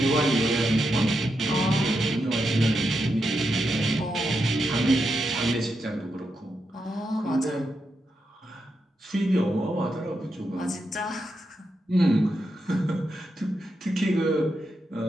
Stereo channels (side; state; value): both; normal; correlation 0.85